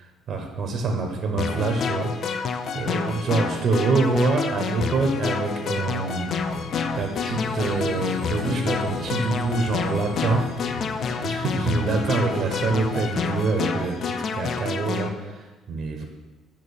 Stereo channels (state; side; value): normal; both; correlation 0.67